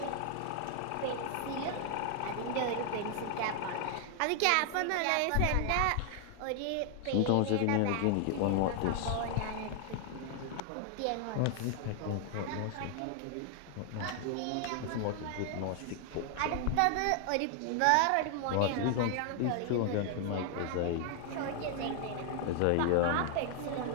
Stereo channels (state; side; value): different; both; correlation 0.00